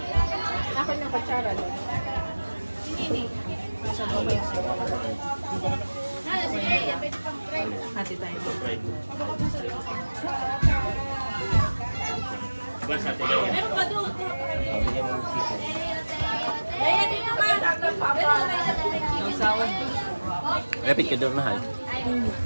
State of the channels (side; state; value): both; inverted; correlation -1.00